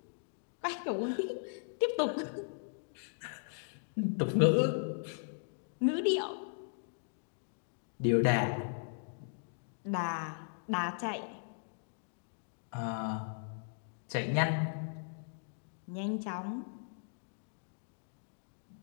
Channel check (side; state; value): right; silent; digital silence